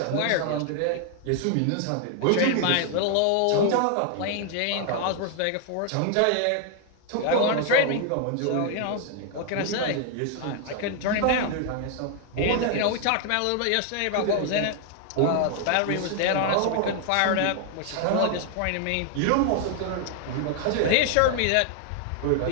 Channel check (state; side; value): different; both; correlation 0.00